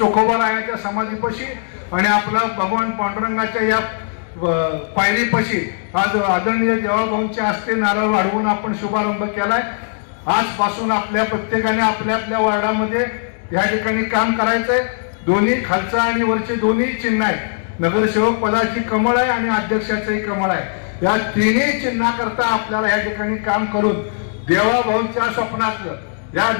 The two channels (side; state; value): right; silent; digital silence